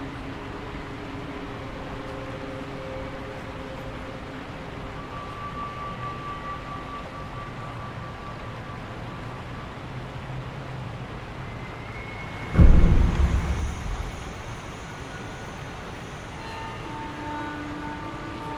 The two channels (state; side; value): identical; both; correlation 1.00